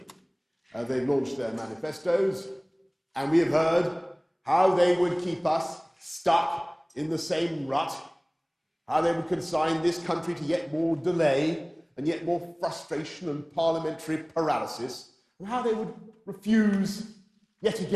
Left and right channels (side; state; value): both; identical; correlation 1.00